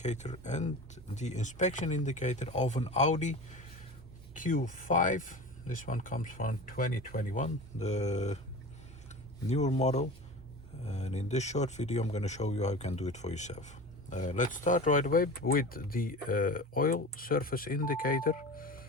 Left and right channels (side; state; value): both; normal; correlation 0.33